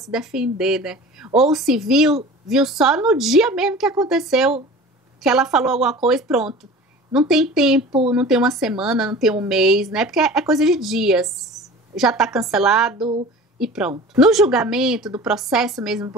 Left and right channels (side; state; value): both; normal; correlation 0.39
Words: defender, né? Ou se viu só no dia mesmo que aconteceu, que ela falou alguma coisa, pronto. Não tem tempo, não tem uma semana, não tem um mês, né? Porque é coisa de dias. Já está cancelado e pronto. No julgamento do processo mesmo do